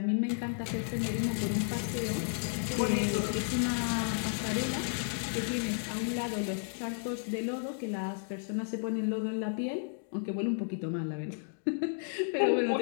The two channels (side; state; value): right; silent; digital silence